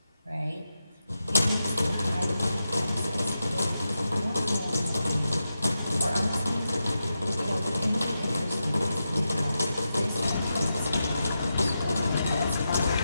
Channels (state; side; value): inverted; both; correlation -0.88